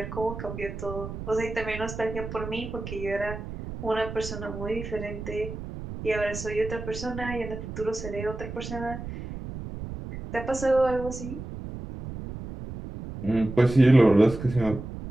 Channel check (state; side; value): noise; right; rumble, 9 dB below the sound